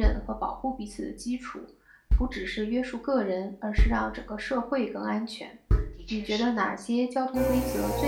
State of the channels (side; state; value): both; identical; correlation 1.00